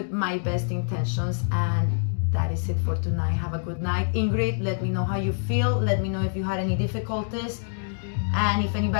my best intentions, and that is it for tonight. Have a good night. Ingrid, let me know how you feel. Let me know if you had any difficulties. And if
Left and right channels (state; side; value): silent; right; digital silence